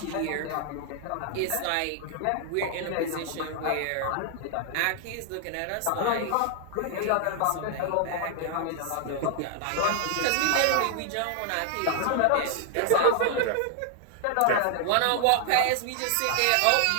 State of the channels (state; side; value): different; both; correlation 0.00